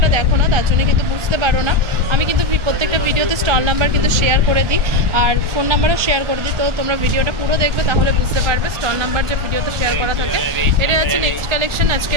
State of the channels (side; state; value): left; late; 1.4 ms